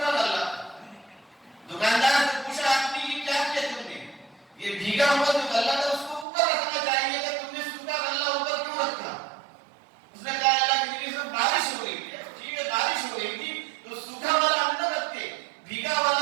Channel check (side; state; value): left; drops out; at 6.2 s